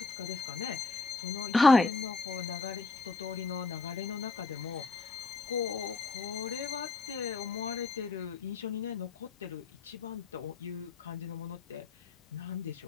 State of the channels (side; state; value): right; quieter; 3.9 dB